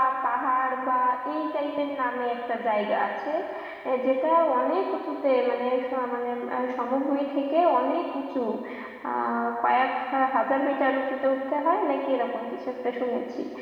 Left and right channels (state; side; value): identical; both; correlation 1.00